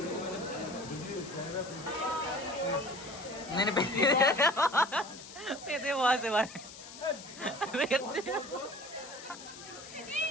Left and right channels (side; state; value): left; noise; hiss, 15 dB below the sound